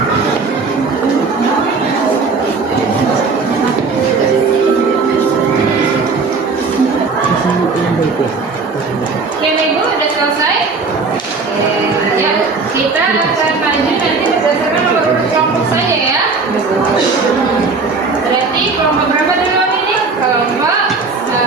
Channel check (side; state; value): left; quieter; 4.3 dB